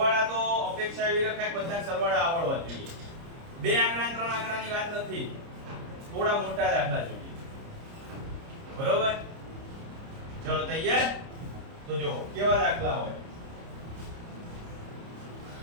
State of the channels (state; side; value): late; left; 30 ms